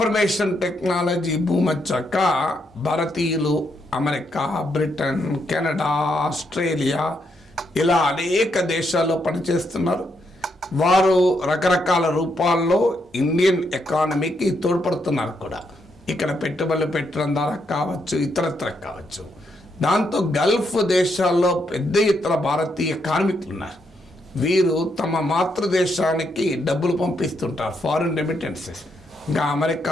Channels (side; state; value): both; normal; correlation 0.78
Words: టెక్నాలజీ భూమి వచ్చాక భారతీయులు అమెరికా, బ్రిటన్, కెనడా, ఆస్ట్రేలియా ఇలా అనేక దేశాల్లో పనిచేస్తున్నారు. వారు రకరకాల రూపాల్లో ఇండియన్ ఎకానమీకి తోడ్పడుతున్నారు కూడా. ఇక్కడ పెట్టుబడులు పెట్టడం ద్వారా కావచ్చు, ఇతరత్ర కావచ్చు. దాంతో గల్ఫ్ దేశాల్లో పెద్ద ఎత్తున భారతీయ కార్మికులు ఉన్నారు. వీరు తమ మాతృదేశానికి డబ్బులు పంపిస్తుంటారు, ఫారిన్ రెమిటెన్సెస్. ఇంకా